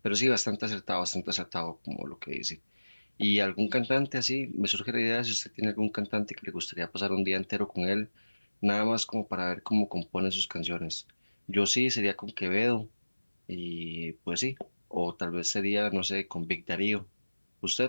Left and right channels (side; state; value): both; inverted; correlation -1.00